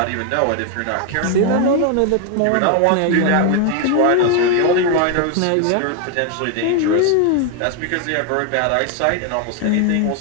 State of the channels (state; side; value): different; both; correlation 0.01